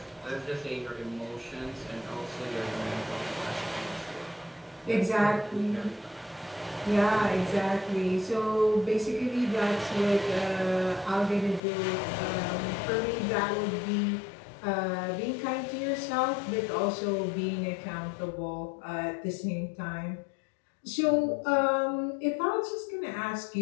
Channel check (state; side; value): drops out; right; at 11.6 s